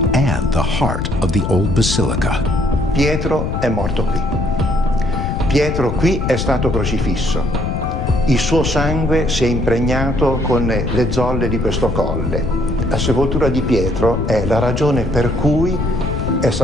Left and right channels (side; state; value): left; noise; rumble, 2 dB below the sound